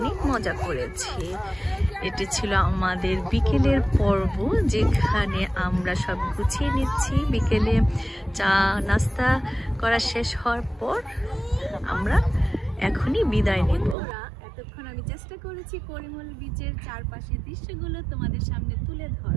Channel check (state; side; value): drops out; left; at 14.0 s